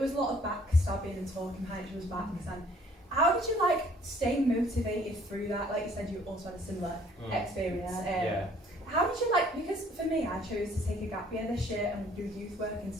was a lot of backstabbing and talking behind each other's backs. And how did you stay motivated through that? Like you said, you also had a similar experience. How did you because for me, I chose to take a gap year this year and do youth work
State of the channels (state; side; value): normal; both; correlation 0.59